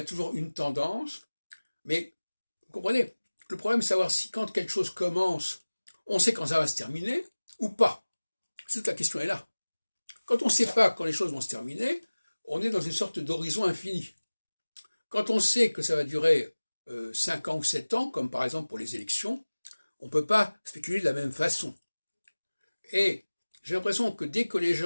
toujours une tendance, mais vous comprenez, le problème c'est savoir si quand quelque chose commence, on sait quand ça va se terminer ou pas. Toute la question est là. Quand on ne sait pas quand les choses vont se terminer, on est dans une sorte d'horizon infini. Quand on sait que ça va durer 5 ans ou 7 ans, comme par exemple pour les élections, on ne peut pas spéculer de la même façon. Et j'ai l'impression que dès que les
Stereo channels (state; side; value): inverted; both; correlation -1.00